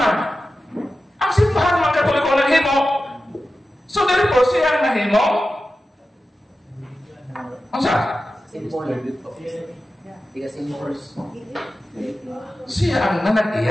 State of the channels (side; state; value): both; normal; correlation 0.93